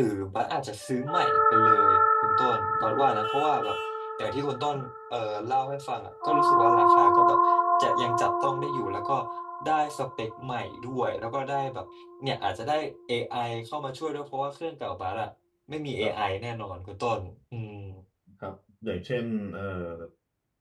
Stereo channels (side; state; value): both; identical; correlation 1.00